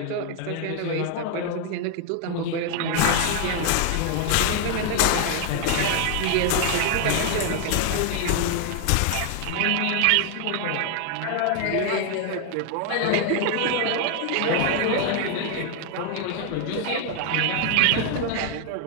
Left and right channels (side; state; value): both; different; correlation 0.00